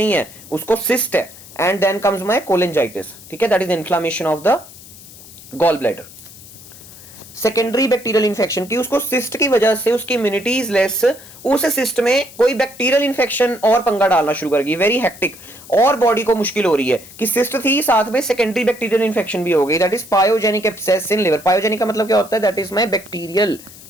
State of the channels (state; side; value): noise; left; hiss, 19 dB below the sound